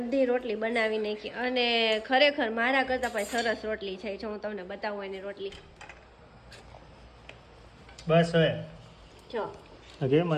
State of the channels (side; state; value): both; identical; correlation 1.00